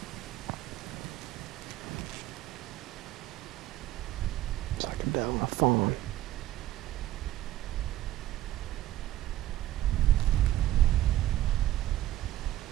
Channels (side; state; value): left; quieter; 14.4 dB